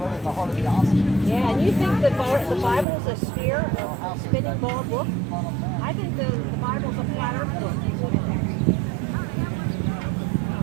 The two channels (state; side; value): drops out; left; at 2.9 s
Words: Yeah, and you think the Bible is a sphere, a spinning ball book? I think the Bible's a flat earth book.